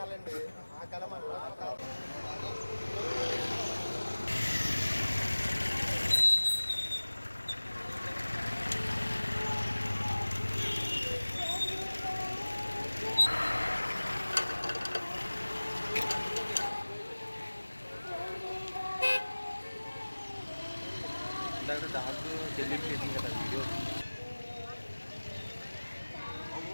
ఆ కలం దాంట్లో డిలీట్ చేసింది కదా వీడియో.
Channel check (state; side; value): inverted; both; correlation -1.00